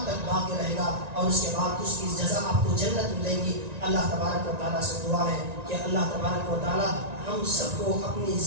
تک باقی رہے گا اور اس کے بعد اس کی جزا آپ کو جنت ملے گی۔ اللہ تبارک و تعالیٰ سے دعا ہے کہ اللہ تبارک و تعالیٰ ہم سب کو اپنی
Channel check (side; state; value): left; late; 1.9 ms